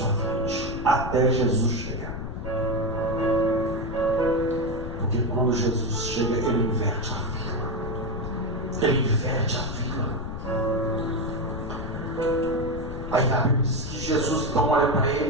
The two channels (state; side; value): noise; left; rumble, 7 dB below the sound